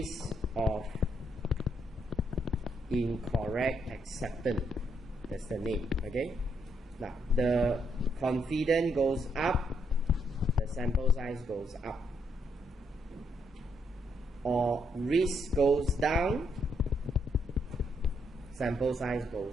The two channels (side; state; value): both; normal; correlation 0.75